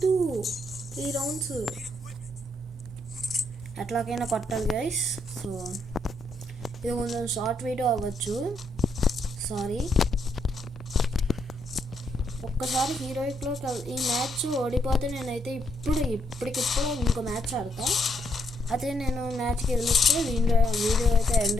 3 rounds ఎట్లాగైనా కొట్టాలి గైస్. సో ఇది కొంచెం షార్ట్ వీడియో అవ్వచ్చు, సారీ. ఒక్కసారి హీరోయిక్లో ఈ మ్యాచ్ ఓడిపోతే నేనైతే ఇప్పటికిప్పుడు ఇంకో మ్యాచ్ ఆడతా. అదే నేను మ్యాచ్కి గెలిస్తే వీడియో అయితే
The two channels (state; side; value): normal; both; correlation 0.75